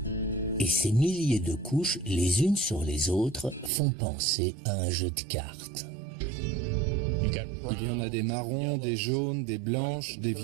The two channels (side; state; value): left; drops out; at 3.7 s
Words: Et ces milliers de couches, les unes sur les autres, font penser à un jeu de cartes. Il y en a des marrons, des jaunes, des blanches, des